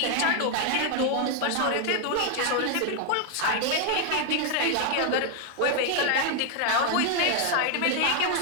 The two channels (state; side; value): different; both; correlation 0.00